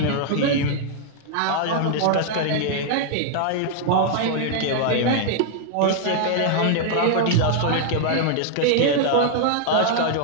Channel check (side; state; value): both; different; correlation -0.01